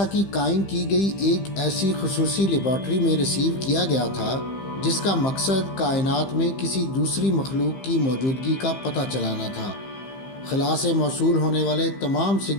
کی قائم کی گئی ایک ایسی خصوصی لیبارٹری میں ریسیو کیا گیا تھا جس کا مقصد کائنات میں کسی دوسری مخلوق کی موجودگی کا پتہ چلانا تھا۔ خلا سے موصول ہونے والے تمام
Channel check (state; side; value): late; right; 15 ms